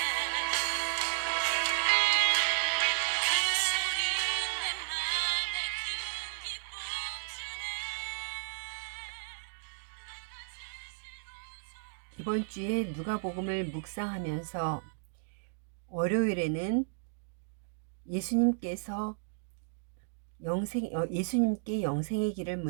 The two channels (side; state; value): left; silent; digital silence